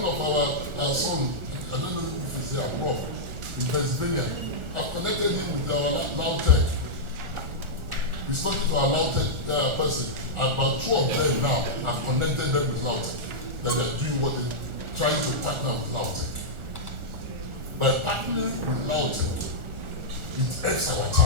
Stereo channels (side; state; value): left; late; 1.4 ms